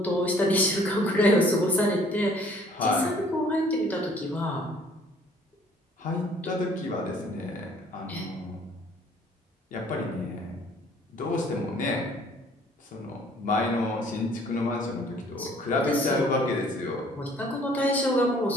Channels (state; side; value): normal; both; correlation 0.57